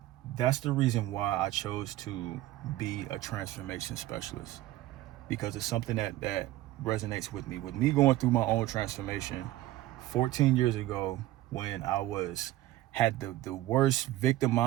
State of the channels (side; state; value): left; quieter; 15.4 dB